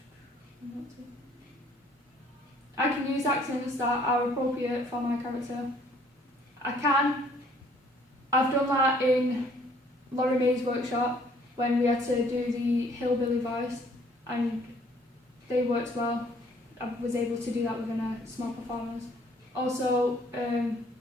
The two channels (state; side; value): normal; both; correlation 0.60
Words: I can use accents that are appropriate for my character. I've done that in Laurie May's workshop when we had to do the hillbilly voice, and they worked well. I was able to do that within a small performance. Also,